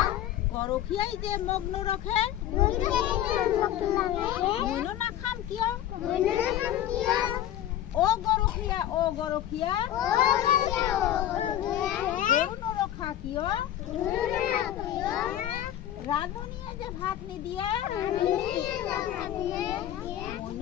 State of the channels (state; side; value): quieter; right; 11.9 dB